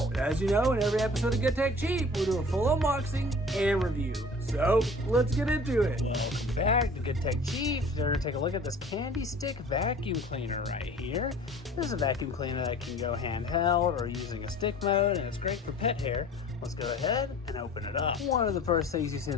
As you know, in every episode of Get Tech Cheap, we'll do a full unboxing and review. So, let's get into it. Welcome back to Get Tech Cheap. We're going to take a look at this Candy Stick Vacuum Cleaner right here. This is a vacuum cleaner that can go handheld or using a stick mode, and it's great for pet hair. Let's go ahead and open it up. One of the first things you see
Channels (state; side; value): normal; both; correlation 0.45